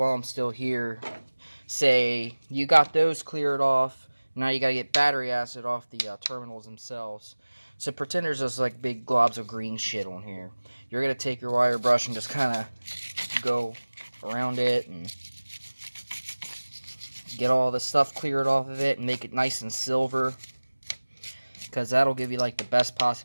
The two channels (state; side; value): inverted; both; correlation -1.00